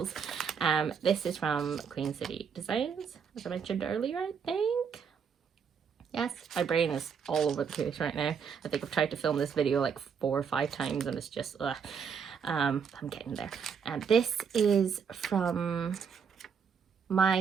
This is from QueenCityDesigns, as I mentioned earlier, I think. Yes, my brain is all over the place right now. I think I've tried to film this video like 4 or 5 times, and it's just, I'm getting there. And this is from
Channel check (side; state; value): left; quieter; 6.6 dB